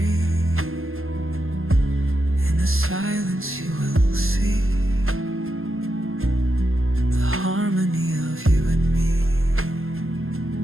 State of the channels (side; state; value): left; late; 0.61 ms